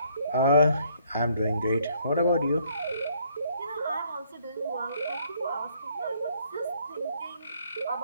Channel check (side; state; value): both; inverted; correlation -0.65